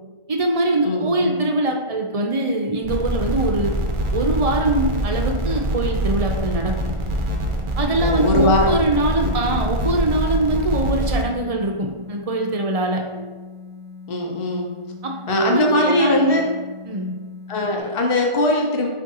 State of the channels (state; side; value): late; left; 1.4 ms